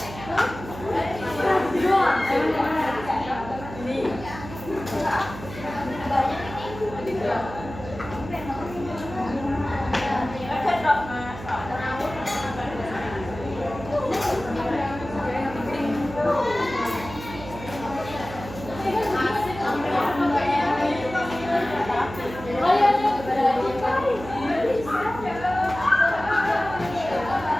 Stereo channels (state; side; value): noise; right; hum, 12 dB below the sound